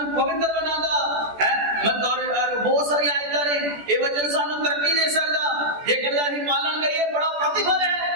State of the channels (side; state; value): left; late; 14 ms